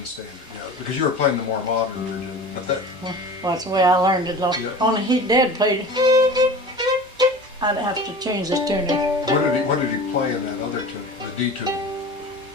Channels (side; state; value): both; normal; correlation 0.37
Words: standard, yeah, because you were playing the more modern version. But that, Well, that's the way I learned it. Yeah. Only Dad played. I'd have to change this tuner. what did he play in that other tune, the D tune?